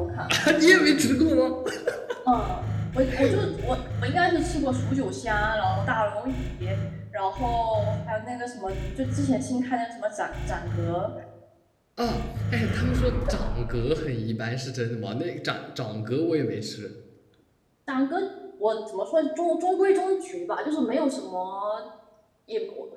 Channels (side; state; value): both; identical; correlation 1.00